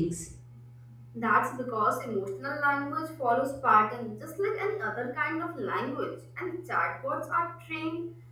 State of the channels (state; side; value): identical; both; correlation 1.00